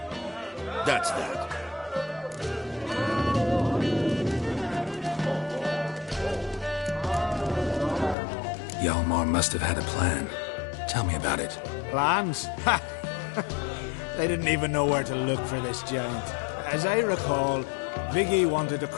That's that. Hjalmar must have had a plan. Tell me about it. Plans? Ha! They didn't even know where to look for this giant. As I recall, Viggy wanted to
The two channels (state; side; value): drops out; right; at 8.2 s